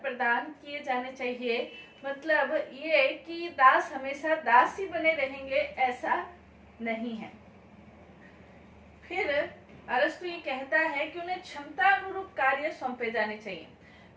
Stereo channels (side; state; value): both; identical; correlation 1.00